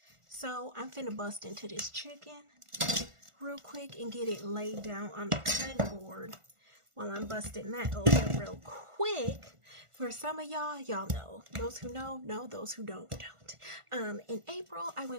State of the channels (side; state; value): left; late; 1.5 ms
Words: So I'm finna bust into this chicken real quick and get it laid down on the cutting board while I'm busting that open real quick. For some of y'all know. Those who know, those who don't. In April, I